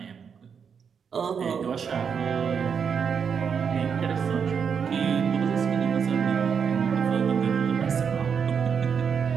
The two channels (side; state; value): left; quieter; 6.7 dB